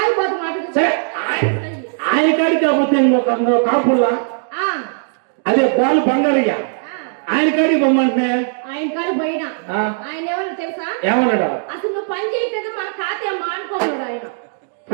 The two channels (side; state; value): left; silent; digital silence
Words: మాట. సరే ఆయన కాడికి కాకపోతే ఇంకొక కాపుల్లా అదే బాలు బంగారయ్య ఆయన కాడికి పొమ్మంటే ఆయన కాడికి పోయినా ఆయన ఎవరు తెలుసా? ఏమన్నాడా? అసలు నువ్వు పని చేయట్లేదు, మన ఖాతా మానుకోమన్నాడు ఆయన.